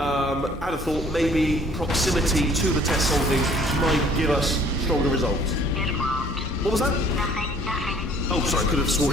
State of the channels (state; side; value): normal; both; correlation 0.56